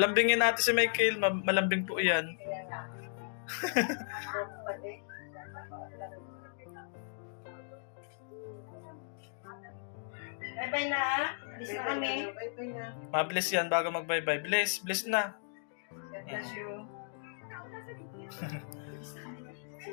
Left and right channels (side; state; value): right; silent; digital silence